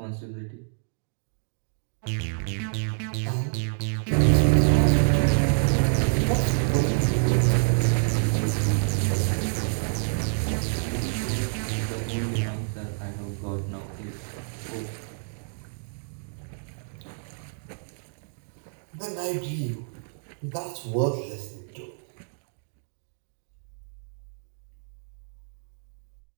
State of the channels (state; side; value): silent; left; digital silence